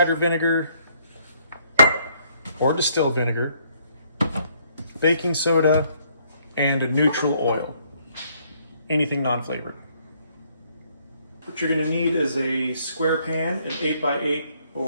vinegar or distilled vinegar, baking soda, and a neutral oil. Anything non-flavored. What you're going to need is a square pan, an 8x8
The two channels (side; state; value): both; inverted; correlation -0.66